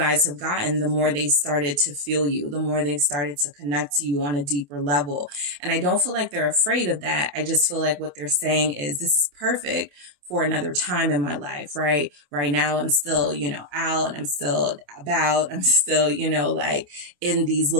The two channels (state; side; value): late; left; 28 ms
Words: have gotten, the more they started to feel you, the more they've started to connect to you on a deeper level. And I don't feel like they're afraid of that. I just feel like what they're saying is this is perfect for another time in my life, right? Right now, I'm still, you know, out, I'm still about, I'm still, you know, like in these